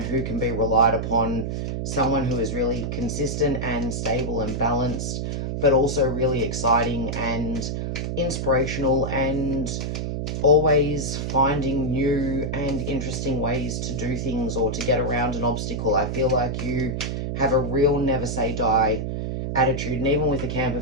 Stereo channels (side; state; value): right; noise; hum, 3 dB below the sound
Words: can be relied upon, someone who is really consistent and stable and balanced, but also really exciting and inspirational and always finding new and interesting ways to do things or to get around an obstacle. I feel like you have a real never say die attitude, and even with the camper